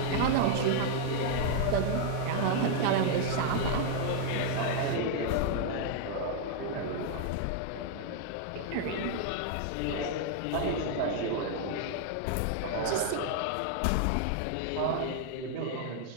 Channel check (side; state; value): both; different; correlation -0.01